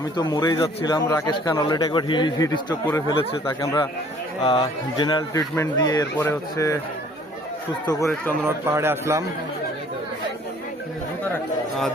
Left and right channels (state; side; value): normal; both; correlation 0.56